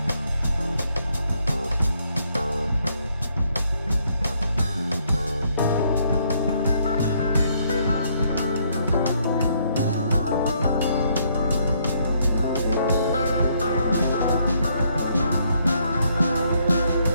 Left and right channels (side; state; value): both; inverted; correlation -0.71